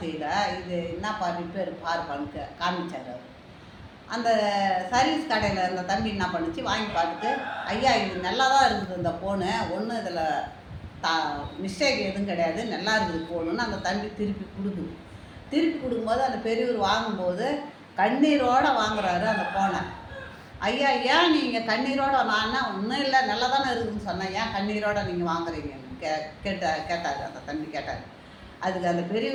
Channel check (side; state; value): both; identical; correlation 1.00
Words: இது என்னப்பா ரிப்பேர் பாருப்பான்னு காமிச்சார் அவர். அந்த சர்வீஸ் கடையில் அந்த தம்பி என்ன பண்ணுச்சு, வாங்கி பார்த்துட்டு, ஐயா இது நல்லா தான் இருக்குது இந்த ஃபோனு, ஒன்றும் இதில் மிஸ்டேக் எதுவும் கிடையாது, நல்லா இருக்குது ஃபோனுன்னு அந்த தம்பி திருப்பி கொடுக்குது. திருப்பி கொடுக்கும்போது அந்த பெரியவர் வாங்கும்போது கண்ணீரோடு வாங்குறாரு அந்த ஃபோனை. ஐயா ஏன் நீங்கள் கண்ணீரோடு, நான் ஒன்றும் இல்லை நல்லா தானே இருக்குதுன்னு சொன்னேன், ஏன் கண்ணீரோடு நீங்கள் வாங்குறீங்கன்னு கேட்டார் அந்த தம்பி கேட்டார். அதுக்கு அந்த